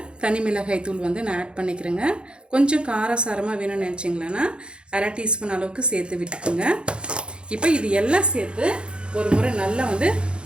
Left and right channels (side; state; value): left; late; 0.054 ms